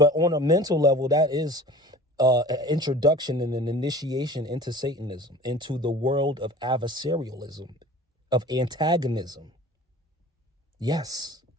on a mental level, that is an introduction and an initiation into Satanism, into the world of adversarialism, of antagonism. Yes,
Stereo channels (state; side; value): normal; both; correlation 0.42